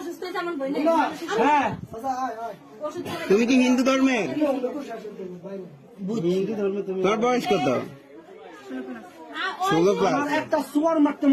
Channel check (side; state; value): both; identical; correlation 1.00